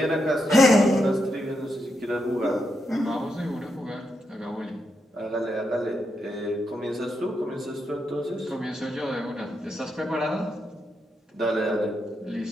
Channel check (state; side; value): normal; both; correlation 0.83